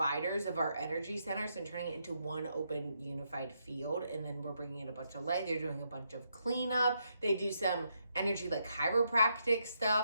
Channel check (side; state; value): both; inverted; correlation -0.79